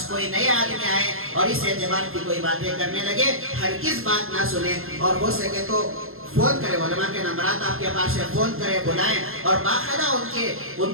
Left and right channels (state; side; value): late; left; 0.61 ms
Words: کوئی نئے آدمی آئے اور اس اعتبار کی کوئی باتیں کرنے لگے، ہرگز بات نہ سنیں، اور ہو سکے تو فون کرے. علماء کے نمبرات آپ کے پاس ہے، فون کرے، بلائیں، اور باقاعدہ ان